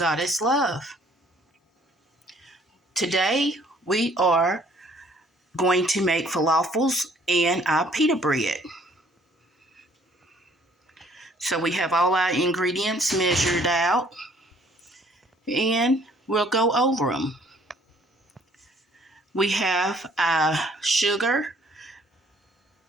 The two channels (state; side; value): normal; both; correlation 0.60